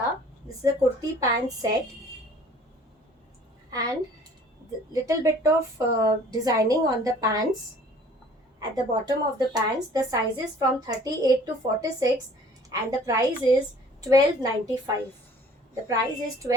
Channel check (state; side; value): normal; both; correlation 0.51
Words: This is a kurti pant set, and the little bit of designing on the pants at the bottom of the pants. The sizes from 38 to 46, and the price is 12.95. The price is